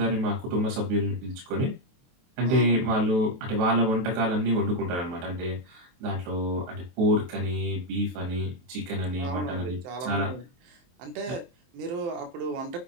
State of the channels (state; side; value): late; left; 23 ms